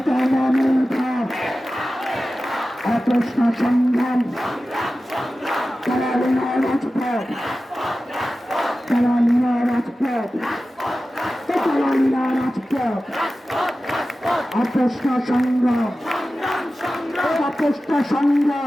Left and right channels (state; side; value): normal; both; correlation 0.94